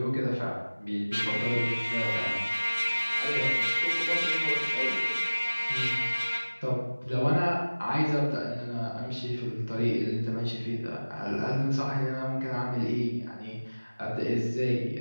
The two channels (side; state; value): both; inverted; correlation -1.00